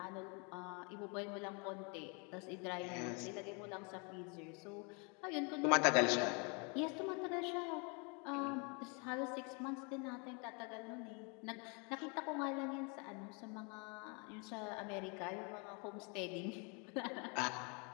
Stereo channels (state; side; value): quieter; right; 33.7 dB